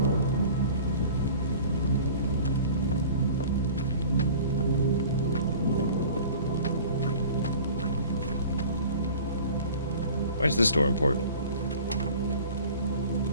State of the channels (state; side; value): inverted; both; correlation -0.43